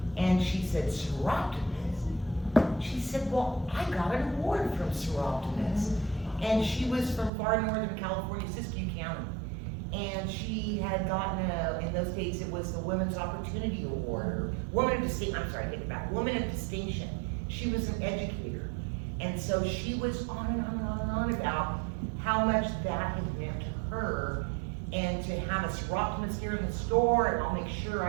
and she said, Soroptimist. She said, well, I got an award from Soroptimist. And she was from far northern California, Siskiyou County. And she had gotten in those days, it was the Women's Opportunity Award, or Woman of Distinction, I'm sorry, I take it back, Woman of Distinction. She was an educator. And so she was on and on and on and on about how much that had meant to her, and to have a Soroptimist here in the store, and I'll make sure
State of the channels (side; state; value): left; drops out; at 7.3 s